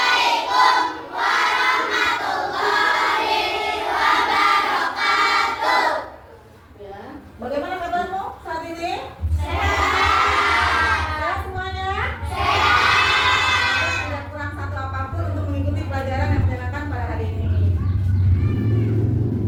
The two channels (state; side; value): identical; both; correlation 1.00